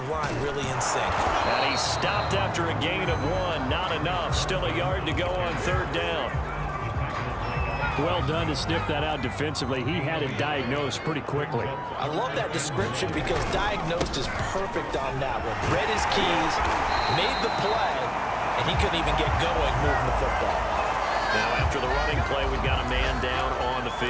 line really in sync. And he stopped after a gain of 1. Not enough. Still a yard to go on 3rd down. Well done to sniff that out defensively. He had it diagnosed pretty quickly. I love that description because diagnosed is perfect on that one. Read his keys, made the play, and he couldn't even get going moving the football. Now after the running play, we've got a man down on the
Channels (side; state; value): both; identical; correlation 1.00